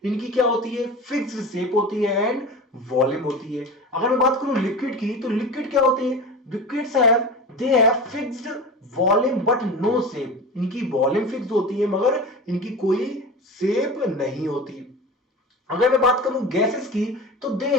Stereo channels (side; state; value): both; normal; correlation 0.31